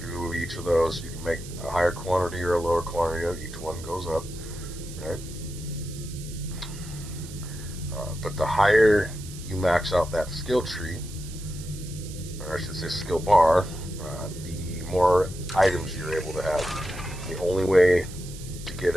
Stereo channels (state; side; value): noise; right; hiss, 16 dB below the sound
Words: of each of those. You can make a higher quantity or a lower quantity. Each one goes up, right? But the higher you max out that skill tree, or I should say skill bar, the more items you're able to have. The only way to get